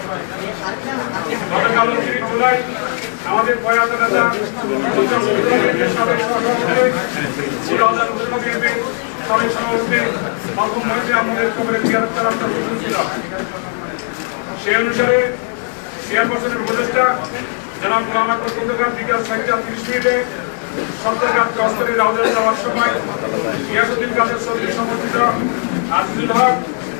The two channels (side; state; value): right; silent; 56 dB below the other